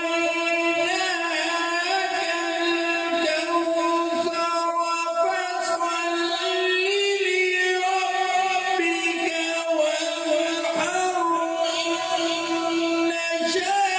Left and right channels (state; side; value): identical; both; correlation 1.00